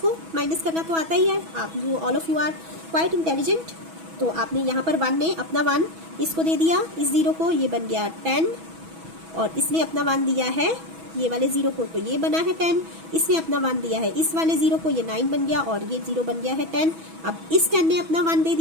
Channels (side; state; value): left; late; 6.1 ms